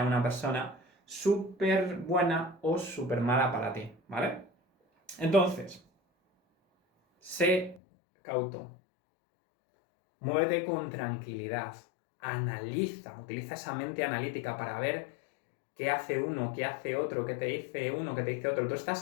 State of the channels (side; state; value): right; drops out; at 7.8 s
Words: una persona súper buena o súper mala para ti, ¿vale? Entonces, sé cauto. Muévete con tranquilidad. Analiza, utiliza esa mente analítica para ver qué hace uno, qué hace otro, qué te dice uno, qué te dice otro. Tú